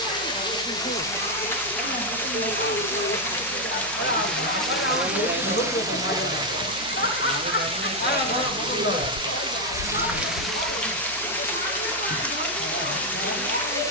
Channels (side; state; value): right; noise; hum, 19 dB below the sound